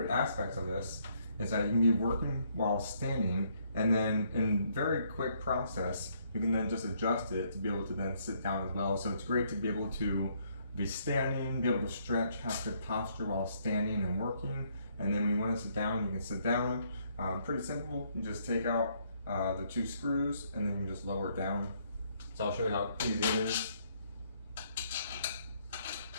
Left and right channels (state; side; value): inverted; both; correlation -0.69